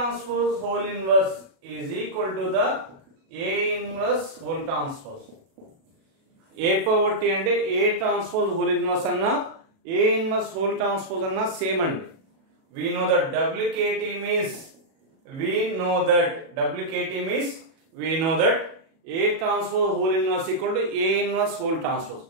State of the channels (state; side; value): late; left; 37 ms